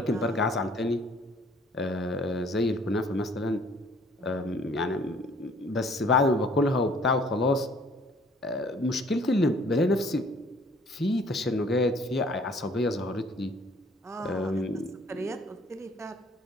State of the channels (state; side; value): normal; both; correlation 0.58